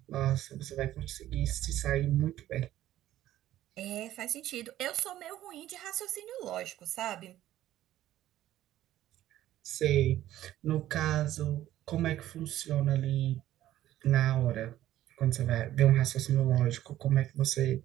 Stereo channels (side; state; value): left; quieter; 13.5 dB